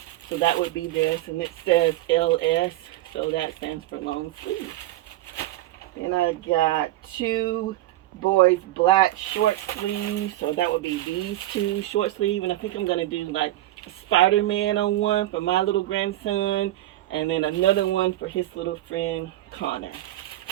So that would be this, and it says LS, so that stands for long sleeve. Then I got 2 boys black short sleeves, so that would be these 2 short sleeve, and I think I'm gonna do like a Spider-Man on one for my little grandson, and then another one for his little friend Connor.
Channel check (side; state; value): left; quieter; 15.3 dB